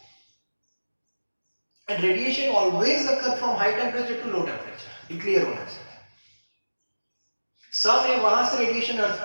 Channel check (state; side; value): inverted; both; correlation -1.00